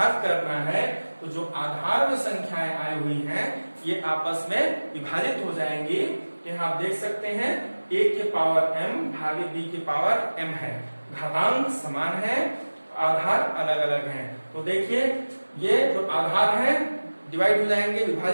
करना है तो जो आधार में संख्याएं आई हुई हैं ये आपस में विभाजित हो जाएंगी। यहाँ आप देख सकते हैं a के पावर m भागे b के पावर m है, घातांक समान है आधार अलग अलग हैं। तो देखिए ये जो आधार है डिवाइड हो जाएंगे,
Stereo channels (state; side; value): inverted; both; correlation -1.00